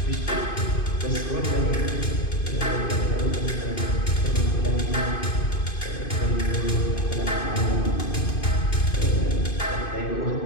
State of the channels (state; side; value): late; right; 2.5 ms